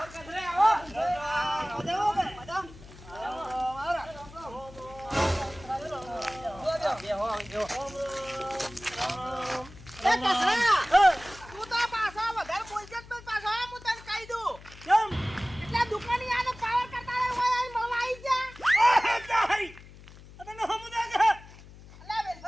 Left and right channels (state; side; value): noise; left; hum, 19 dB below the sound